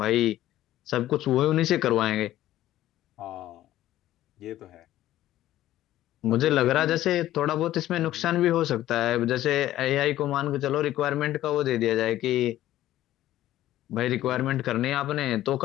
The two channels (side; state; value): right; quieter; 14.0 dB